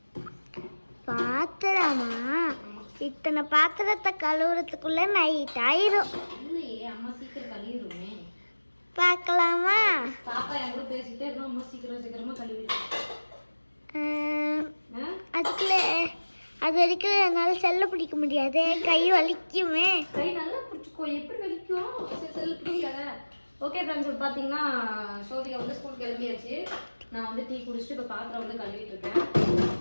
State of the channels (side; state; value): both; inverted; correlation -1.00